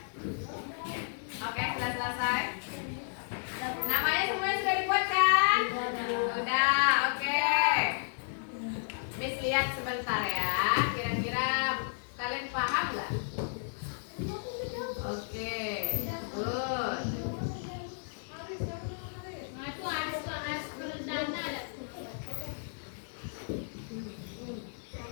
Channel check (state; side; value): silent; right; 56 dB below the other